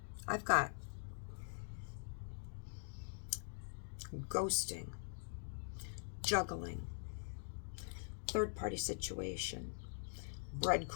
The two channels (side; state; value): right; silent; digital silence